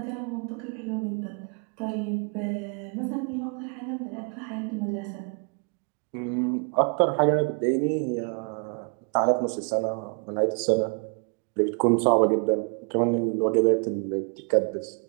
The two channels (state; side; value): quieter; left; 38.3 dB